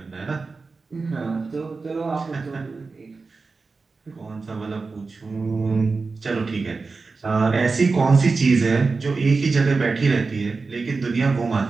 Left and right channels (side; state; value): left; quieter; 4.2 dB